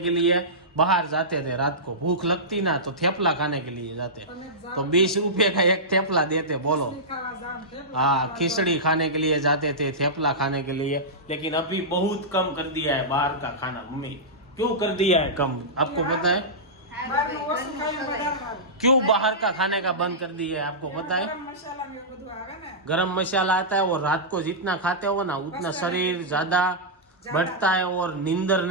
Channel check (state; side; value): normal; both; correlation -0.14